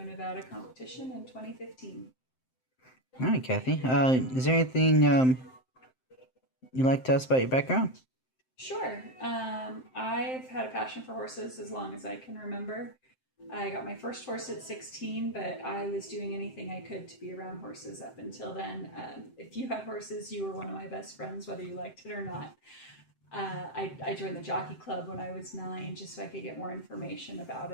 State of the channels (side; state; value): right; late; 7.7 ms